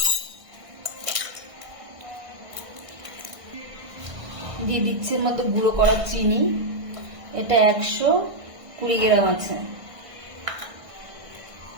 দিয়ে দিচ্ছি এর মধ্যে গুঁড়ো করা চিনি। এটা 120 গ্রাম আছে।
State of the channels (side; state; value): left; late; 1.5 ms